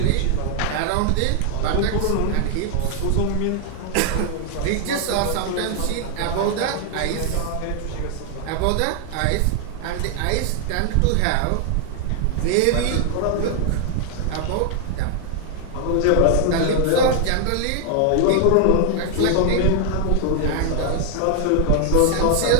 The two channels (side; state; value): both; different; correlation 0.00